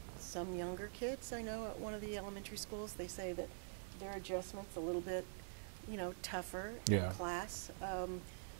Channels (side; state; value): left; silent; digital silence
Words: Some younger kids, I know at one of the elementary schools, they say that their adjustment's a little bit, tougher in class.